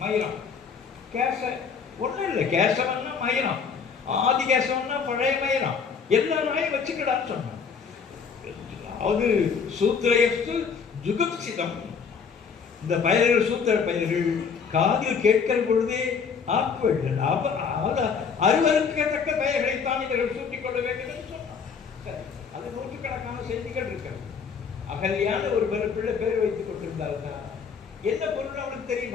மயிரம். கேச ஒன்றும் இல்லை, கேசவன்னா மயிரம், ஆதி கேசவன்னா பழைய மயிரம். எல்லா நாயும் வச்சுக்கடான்னு சொன்னான். அது சூத்திரயஸ்து ஜுகுப்சிதம். இந்த பயிர்கள் சூத்திர பயிர்கள் காதில் கேட்கிற பொழுதே ஆக்குவர்கள் அறுவருக்கத்தக்க பெயர்களைத்தான் இவர்கள் சூட்டிக் கொள்ள வேண்டும் என்று சொன்னார். சரி, அது நூற்றுக்கணக்கான செய்திகள் இருக்கிறது. அகல்யான ஒரு பிள்ளை பேர் வைத்துக் கொண்டிருந்தாருன்னா என்ன பொருள் அவனுக்கு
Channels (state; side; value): quieter; right; 6.1 dB